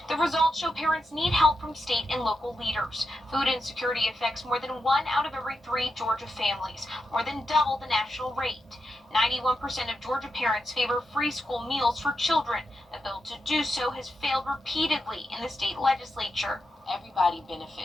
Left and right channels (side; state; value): both; normal; correlation 0.86